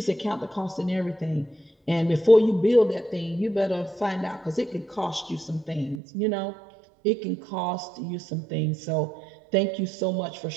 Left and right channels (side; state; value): left; drops out; at 6.0 s